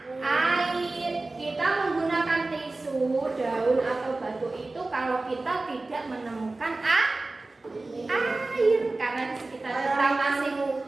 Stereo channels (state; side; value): quieter; left; 3.2 dB